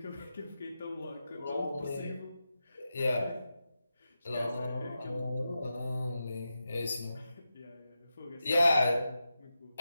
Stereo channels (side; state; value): both; inverted; correlation -0.90